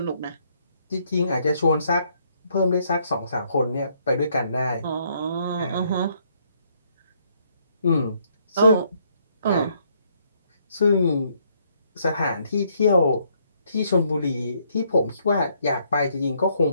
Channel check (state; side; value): inverted; both; correlation -0.70